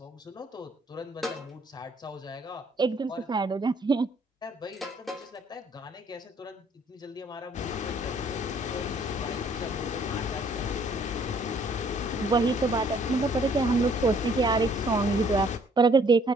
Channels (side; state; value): both; normal; correlation 0.62